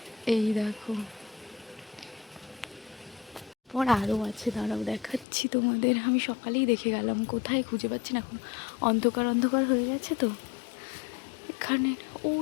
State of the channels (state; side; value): drops out; right; at 5.2 s